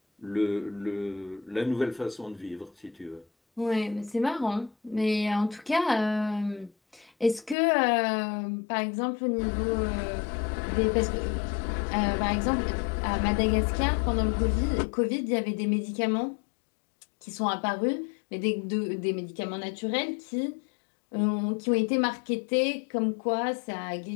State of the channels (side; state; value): right; drops out; at 7.6 s